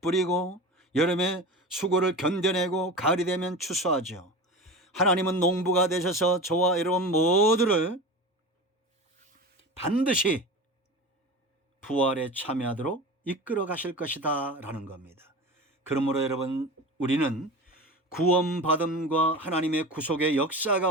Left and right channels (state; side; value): normal; both; correlation 0.31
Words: 여름에 수고를 견뎌내고 가을이 되면 추수하죠. 하나님은 농부가 되셔서 저와 여러분 모두를 반드시 부활에 참여하도록 이끌어 가실 것이다 라는 겁니다. 그러므로 여러분, 우리는 구원받음과 하나님의 구속의 역사